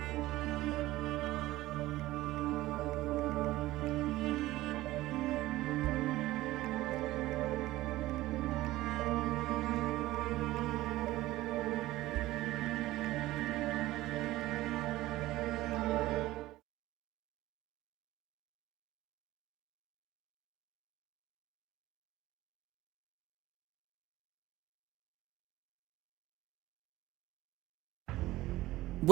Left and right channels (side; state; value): left; quieter; 17.1 dB